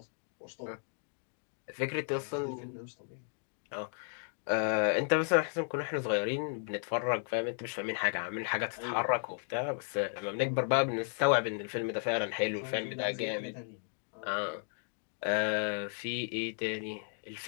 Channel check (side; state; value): right; silent; 55 dB below the other